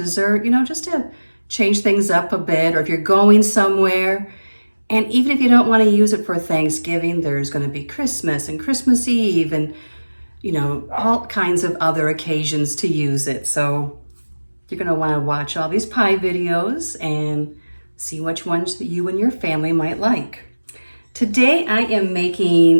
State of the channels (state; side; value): inverted; both; correlation -1.00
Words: you know, just to change things up a bit, or if you're going somewhere. And even if you don't want to use it for Thanksgiving, there's going to be Christmas and Christmas Eve and, you know, all kinds of other occasions to use it. So you're going to want to watch all these pie videos and see which ones that you and your family might like. Today I'm